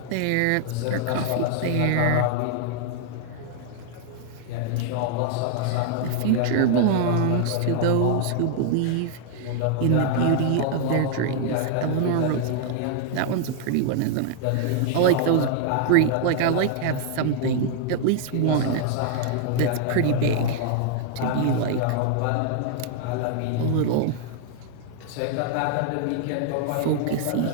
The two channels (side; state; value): both; different; correlation 0.00